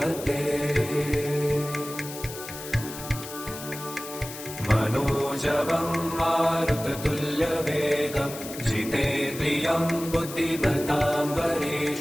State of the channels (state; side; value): noise; left; hiss, 11 dB below the sound